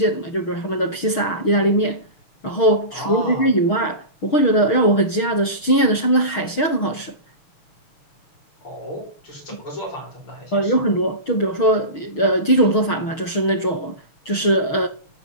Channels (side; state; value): right; late; 6.4 ms